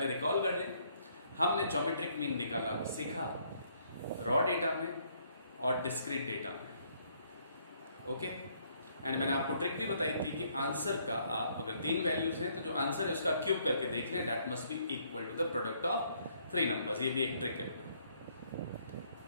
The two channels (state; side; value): inverted; both; correlation -0.68